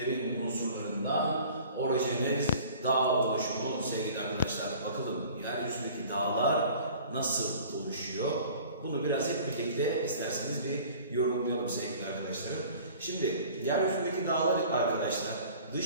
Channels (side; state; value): both; inverted; correlation -0.47